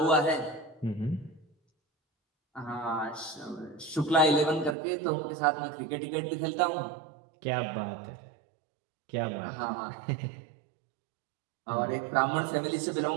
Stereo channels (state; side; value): drops out; left; at 4.8 s